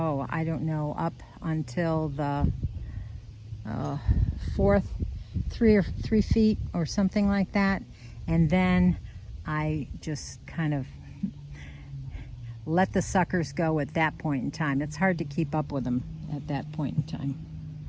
don't know, up until the 3 feet or something like that, and then I just kind of let the suckers go at that point in time. It's hard to keep up with them at that point in time.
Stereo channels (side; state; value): both; identical; correlation 1.00